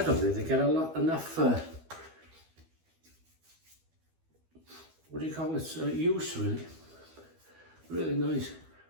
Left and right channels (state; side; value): late; left; 12 ms